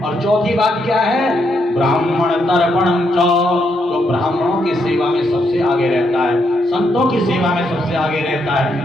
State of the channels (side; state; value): both; normal; correlation 0.78